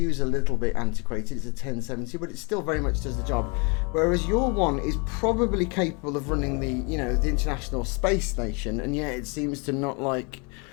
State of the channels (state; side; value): quieter; right; 31.9 dB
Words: a little bit antiquated. It's a 1070, but it still very much does the job. Whereas your one is probably capable of running the International Space Station, and yet it seems to not like